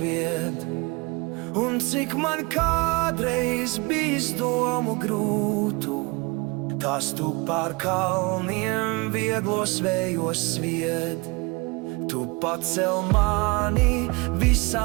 Un cik man kādreiz bijis domu grūtu, tās tu pār kalniem vieglos vējos svied. Tu pacel mani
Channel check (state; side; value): quieter; left; 27.3 dB